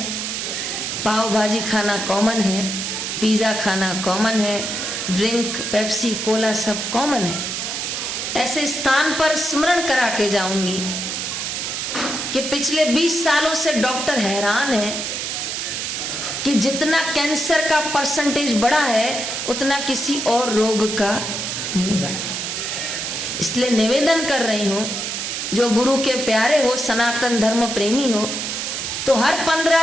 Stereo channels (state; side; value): noise; right; hiss, 3 dB below the sound